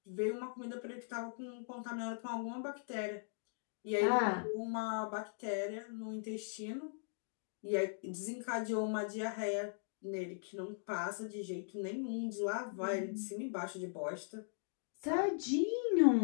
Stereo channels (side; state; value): right; silent; digital silence